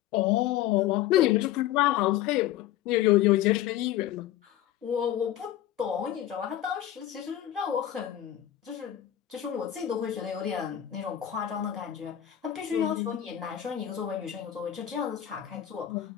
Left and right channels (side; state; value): right; quieter; 12.2 dB